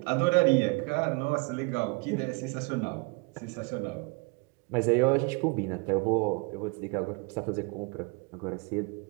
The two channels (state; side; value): quieter; left; 29.9 dB